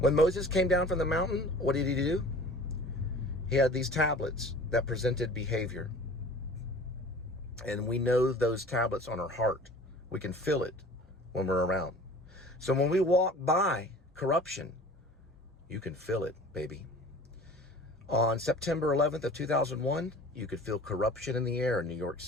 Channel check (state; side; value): normal; both; correlation 0.44